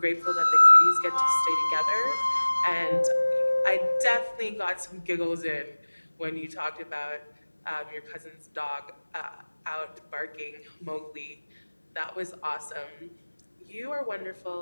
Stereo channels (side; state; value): both; inverted; correlation -1.00